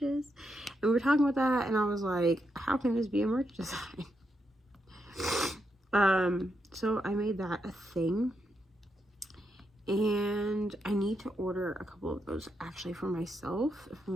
And we were talking about that, and I was like, how can this be a merch design? So I made that a thing, and I need to order a couple of those actually for myself, if I'm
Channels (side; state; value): both; normal; correlation 0.82